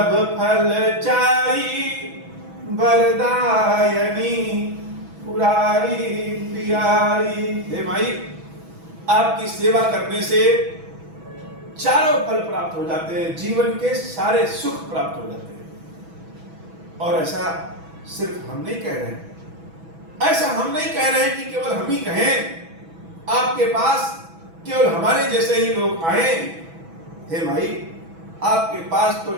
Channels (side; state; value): left; late; 6.1 ms